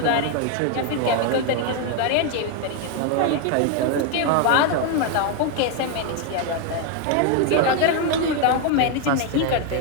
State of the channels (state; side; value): different; both; correlation 0.01